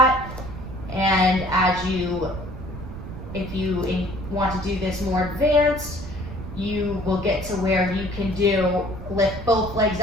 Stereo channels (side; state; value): right; noise; rumble, 10 dB below the sound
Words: and if you want to do this more advanced, you will get to where you can lift both legs